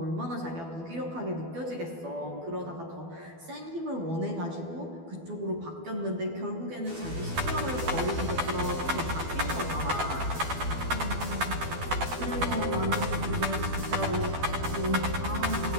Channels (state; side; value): late; left; 12 ms